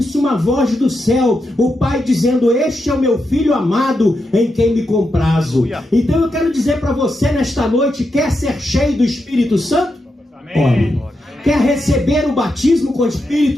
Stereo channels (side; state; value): both; normal; correlation 0.86